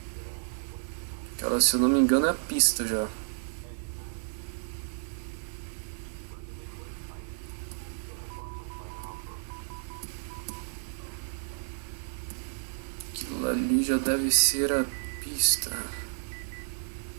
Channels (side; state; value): left; silent; 57 dB below the other